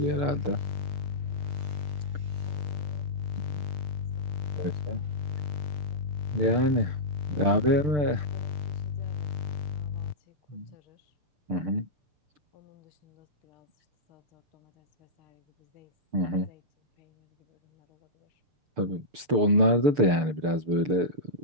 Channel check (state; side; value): late; left; 6.7 ms